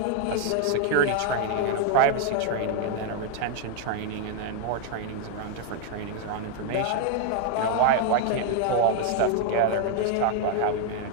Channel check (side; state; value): both; different; correlation 0.00